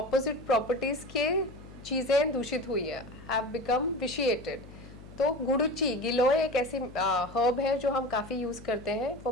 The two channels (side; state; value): left; noise; hum, 18 dB below the sound